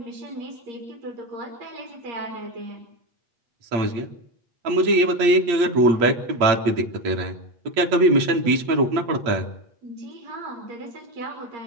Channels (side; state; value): left; late; 8.4 ms